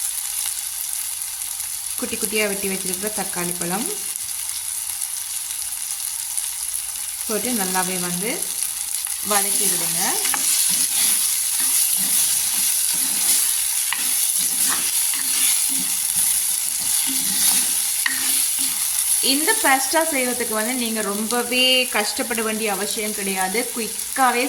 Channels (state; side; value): identical; both; correlation 1.00